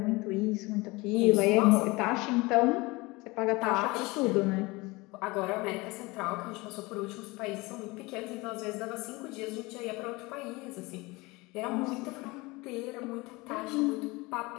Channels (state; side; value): quieter; right; 23.5 dB